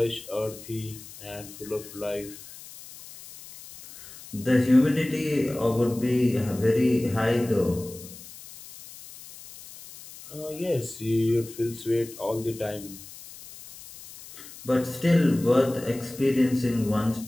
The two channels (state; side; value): noise; left; hiss, 17 dB below the sound